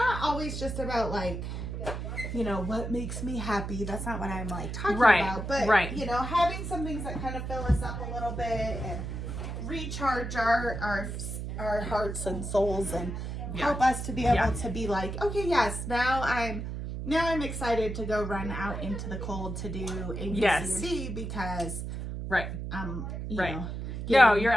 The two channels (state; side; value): noise; right; hum, 5 dB below the sound